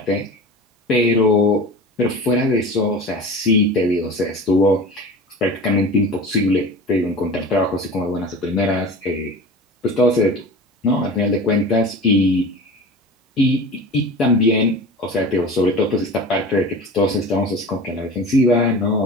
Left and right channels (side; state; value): both; normal; correlation 0.34